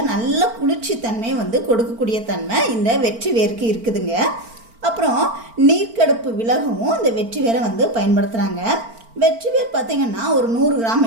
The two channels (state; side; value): late; left; 4.4 ms